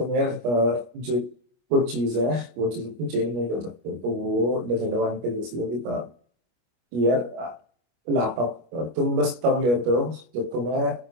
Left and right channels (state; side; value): late; left; 25 ms